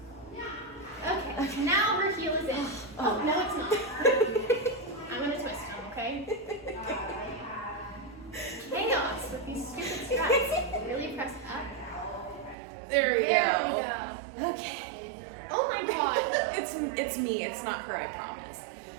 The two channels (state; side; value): drops out; left; at 12.6 s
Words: Okay, now her heel is in. Oh, no, it's not. I'm gonna twist them, okay? Chaos with these stupid straps. Really press up. There we There go. we go. Okay. Oh my god. It's me. It's not her. I promise.